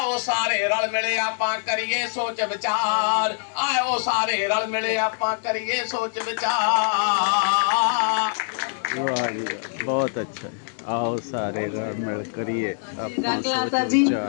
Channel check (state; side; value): silent; right; digital silence